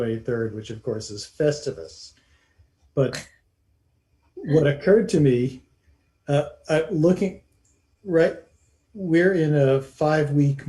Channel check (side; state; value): both; identical; correlation 1.00